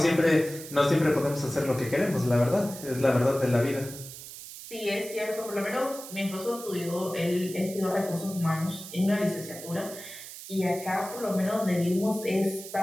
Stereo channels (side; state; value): right; noise; hiss, 13 dB below the sound